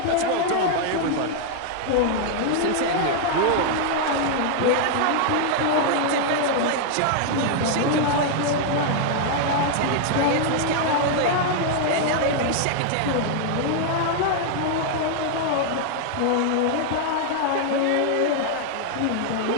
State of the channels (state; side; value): different; both; correlation 0.00